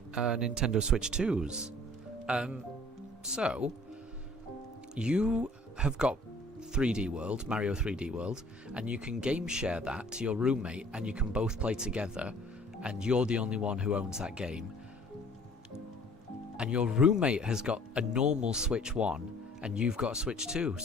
Nintendo Switch 2s. So, you have got 3D World, Mario 3D World, and you can game share that to your roommate, and you can both play together, and you're the only one who owns that game. And your roommate has got a normal Switch 1, and you've got a Switch 2,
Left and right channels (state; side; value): normal; both; correlation 0.53